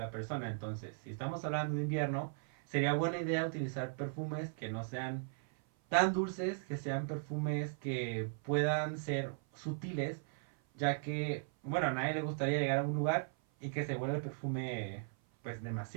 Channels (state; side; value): silent; left; 53 dB below the other